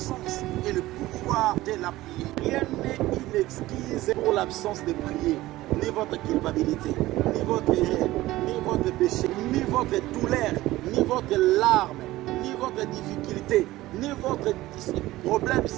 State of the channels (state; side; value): quieter; left; 17.1 dB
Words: et le pouvoir de la prière. Rien n'est une excuse pour l'absence de prier. Ni votre culpabilité, ni votre erreur, ni votre péché, ni votre douleur, ni votre larme, ni votre difficulté, ni votre problème,